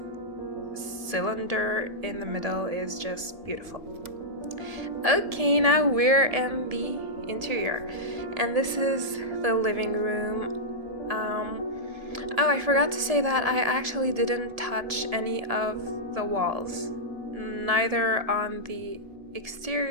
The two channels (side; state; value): left; late; 1.7 ms